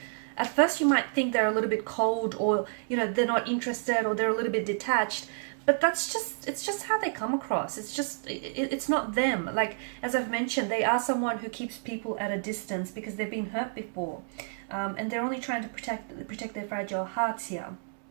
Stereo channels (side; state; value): left; silent; digital silence